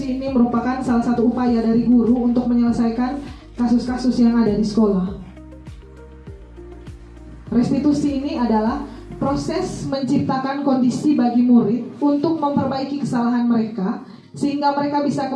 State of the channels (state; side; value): identical; both; correlation 1.00